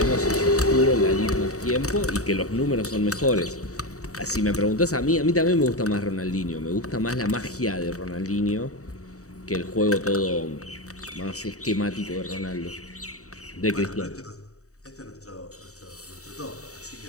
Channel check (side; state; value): right; late; 0.65 ms